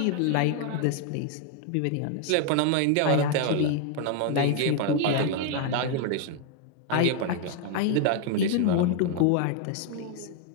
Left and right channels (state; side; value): different; both; correlation 0.00